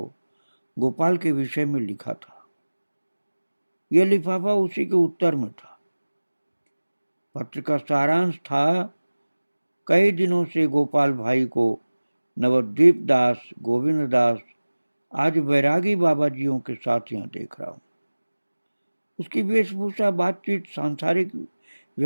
गोपाल के विषय में लिखा था। यह लिफाफा उसी के उत्तर में था। पत्र का सारांश था, कई दिनों से गोपाल भाई को नवद्वीप दास, गोविंद दास, आज बैरागी बाबा जियों के साथ यहाँ देख रहा हूँ। उसकी वेशभूषा, बातचीत सांसारिक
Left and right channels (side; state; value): both; inverted; correlation -1.00